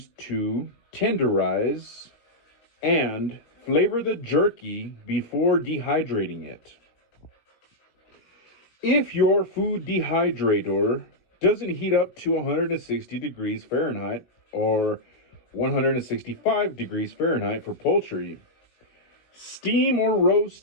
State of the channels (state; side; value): late; right; 19 ms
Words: to tenderize and flavor the jerky before dehydrating it. If your food dehydrator doesn't heat up to 160 degrees Fahrenheit or 165 degrees Fahrenheit for poultry, steam or